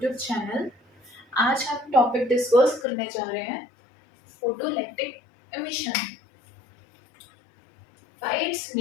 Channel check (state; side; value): drops out; right; at 2.9 s